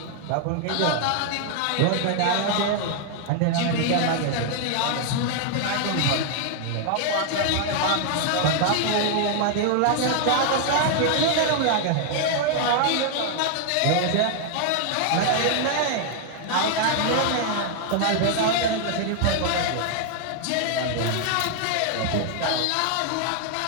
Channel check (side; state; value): both; different; correlation 0.00